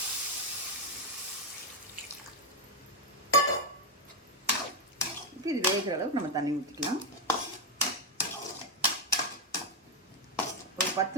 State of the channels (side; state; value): both; normal; correlation 0.05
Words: இப்போ இது வேகிற அளவுக்கு நம்ம தண்ணி ஊற்றிக்கலாம். ஒரு